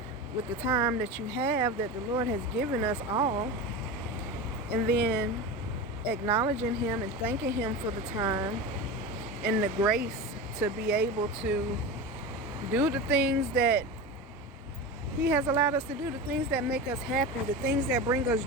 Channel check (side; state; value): both; normal; correlation 0.26